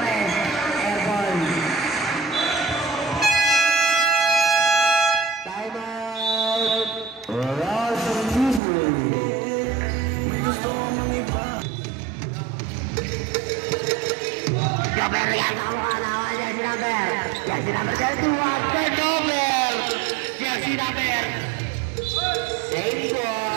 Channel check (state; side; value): drops out; left; at 8.6 s